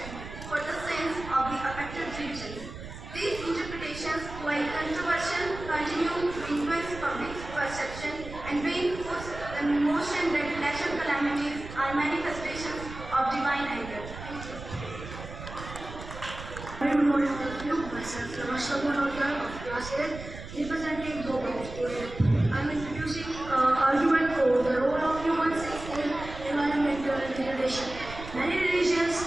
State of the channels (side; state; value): right; noise; rumble, 12 dB below the sound